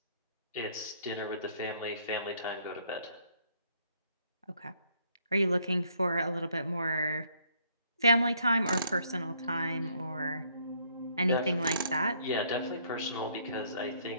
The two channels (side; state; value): both; inverted; correlation -0.67